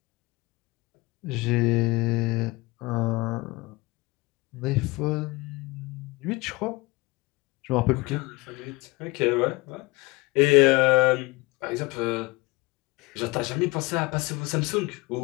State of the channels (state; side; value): quieter; right; 23.4 dB